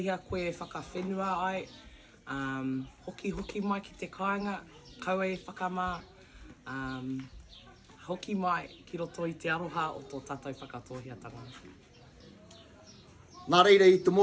koe whakawhenua ai, hoki mai ki te kāinga, kaue whakamā, hoki mai ki roto i te aroha o tō tātou whakatohiatanga. Nā reira i te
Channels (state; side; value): identical; both; correlation 1.00